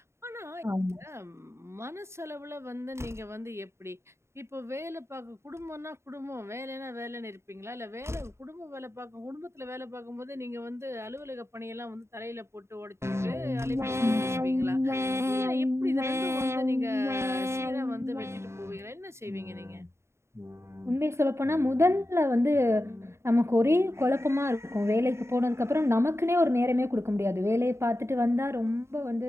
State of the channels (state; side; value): late; left; 0.13 ms